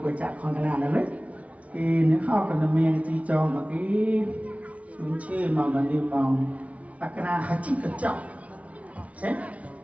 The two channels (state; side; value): late; left; 0.066 ms